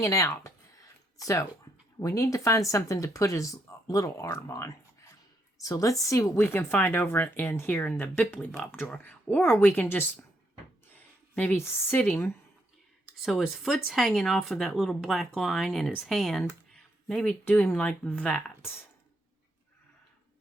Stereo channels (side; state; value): both; normal; correlation 0.76